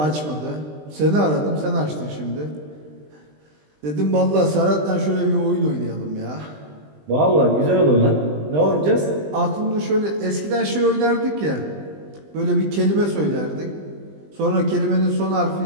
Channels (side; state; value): left; late; 20 ms